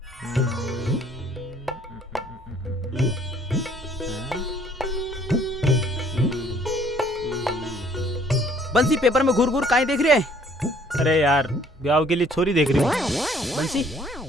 बंसी पेपर में घूर काहे देख रहे है? अरे यार, ब्याह के लिए छोरी देख रही हूँ। बंसी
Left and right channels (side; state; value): both; normal; correlation 0.59